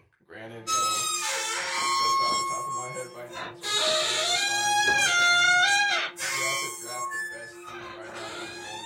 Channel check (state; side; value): identical; both; correlation 1.00